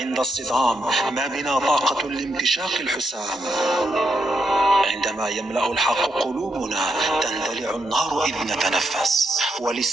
الصدام. ما بنا طاقة لامتشاق الحسام. عندما يملأ الحق قلوبنا تندلع النار إذ نتنفس،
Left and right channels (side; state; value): both; normal; correlation 0.80